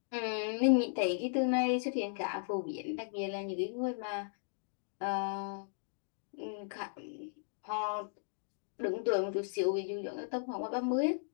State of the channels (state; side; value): silent; right; digital silence